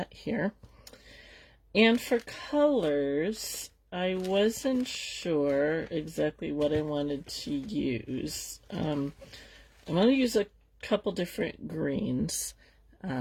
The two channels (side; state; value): both; identical; correlation 1.00